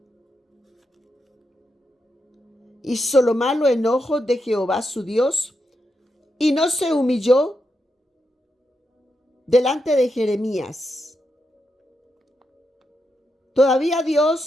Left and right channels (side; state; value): both; normal; correlation 0.85